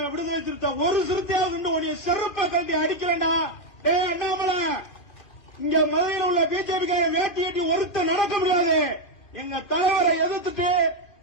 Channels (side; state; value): right; late; 2.4 ms